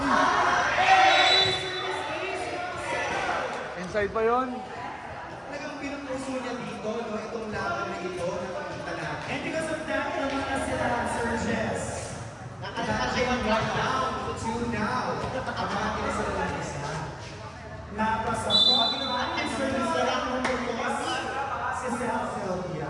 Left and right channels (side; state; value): both; identical; correlation 1.00